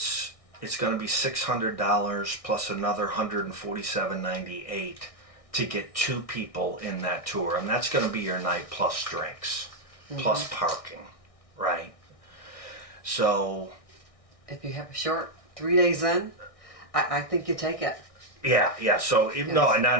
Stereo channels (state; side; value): late; right; 1.6 ms